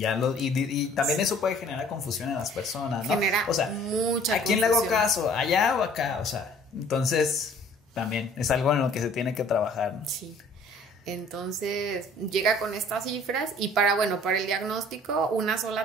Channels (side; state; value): both; normal; correlation 0.53